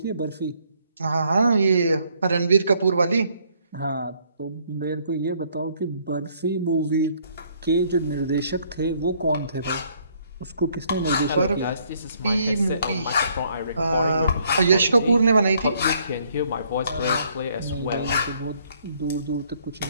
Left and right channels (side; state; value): both; inverted; correlation -0.66